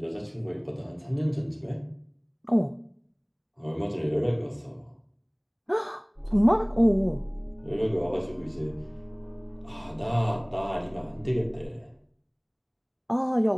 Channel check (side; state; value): both; identical; correlation 1.00